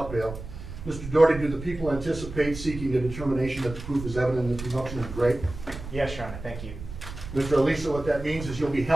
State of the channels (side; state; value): right; noise; rumble, 11 dB below the sound